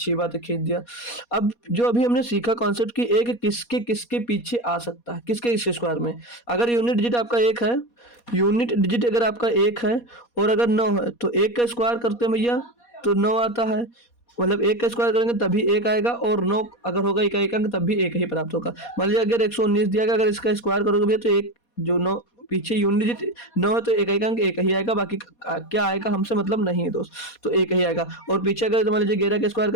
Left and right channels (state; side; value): late; right; 4.2 ms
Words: बात है खींच दिया। अब जो अभी हमने सीखा कॉन्सेप्ट कि एक किसके किसके पीछे आ सकता है, किसके इस स्क्वायर में। अगर यूनिट डिजिट आपका 1 है, यूनिट डिजिट अगर आपका 1 है और अगर 9 है, तो 1 का स्क्वायर करते हैं भैया तो 9 आता है, मतलब 1 का स्क्वायर करेंगे तभी 1 आएगा, और 9 अगर होगा इकाई का अंक तब भी 1 ही प्राप्त होगा। मान लीजिए अगर 119 दिया गया, अगर इसका स्क्वायर करोगे भैया तो एक जो 9 पीछे यूनिट डिजिट 9 है तो इकाई का अंक 1 ही आएगा, बाकी क्या आएगा हमसे मतलब नहीं है दोस्त, तो 1 ही आएगा। और पीछे अगर मान लीजिए 11 का स्क्वायर